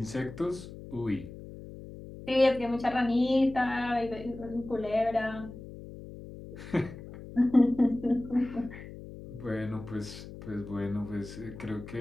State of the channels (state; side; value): noise; left; hum, 14 dB below the sound